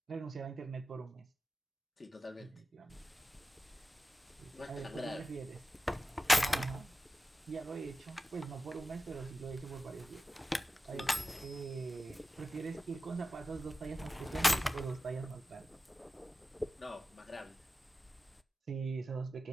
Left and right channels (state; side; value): normal; both; correlation 0.94